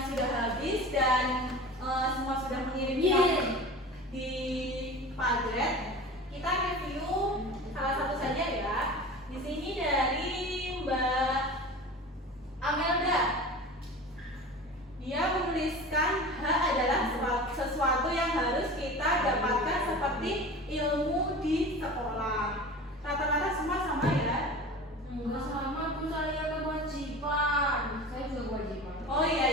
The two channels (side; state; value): both; normal; correlation 0.35